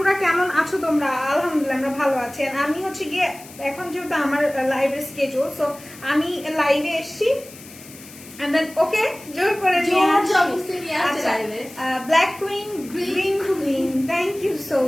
কেমন আছো তোমরা? আলহামদুলিল্লাহ আমরা ভালো আছি। আমি হচ্ছে গিয়ে এখন যেহেতু আমার লাইভের স্কেজুল, সো আমি লাইভে এসছি ওকে জোর করে black queen green queen, thank you so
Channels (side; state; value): left; noise; hiss, 19 dB below the sound